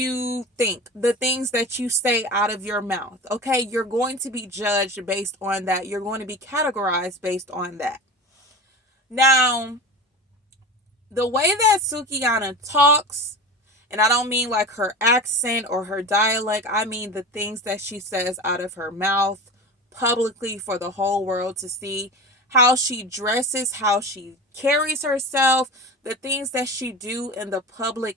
think, the things that you say out of your mouth. Okay, you're going to be judged based on that. You're going to be categorized based on that. Now, the way that Sukihana talks, and I don't mean like her accent or her dialect, I mean the things that she says out of her mouth publicly for the whole world to see, how she dresses, how she carries herself, the things that she do in the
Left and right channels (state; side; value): normal; both; correlation 0.31